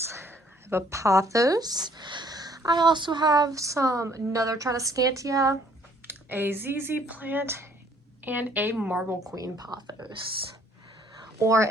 I have a pothos. I also have another Tradescantia, a ZZ plant, and a Marble Queen pothos. Or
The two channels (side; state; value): both; normal; correlation 0.62